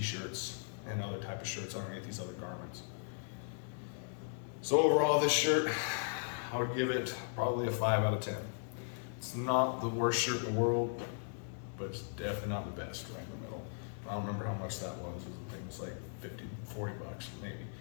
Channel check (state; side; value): silent; right; digital silence